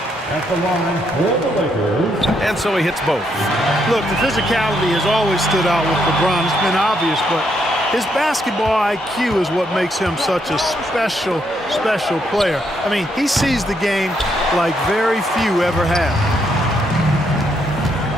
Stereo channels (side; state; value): both; normal; correlation 0.76